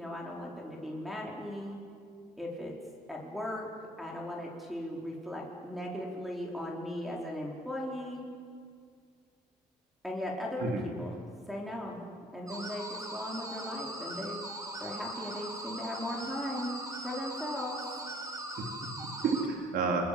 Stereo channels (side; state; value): both; normal; correlation 0.56